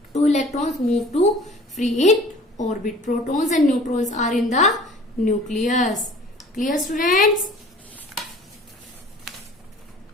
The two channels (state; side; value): normal; both; correlation 0.48